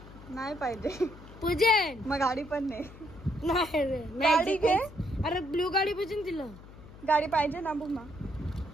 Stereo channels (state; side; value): noise; left; hum, 18 dB below the sound